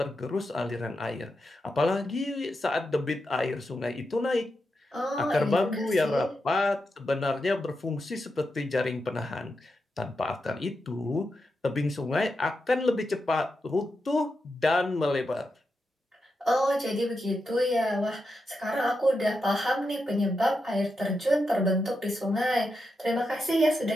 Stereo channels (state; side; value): normal; both; correlation 0.87